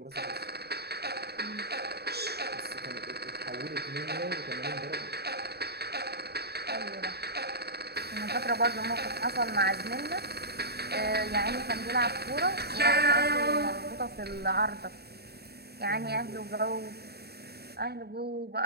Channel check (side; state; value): left; late; 0.47 ms